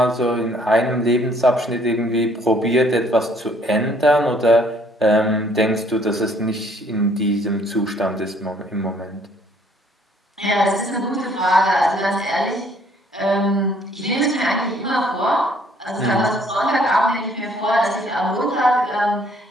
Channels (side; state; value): both; normal; correlation 0.62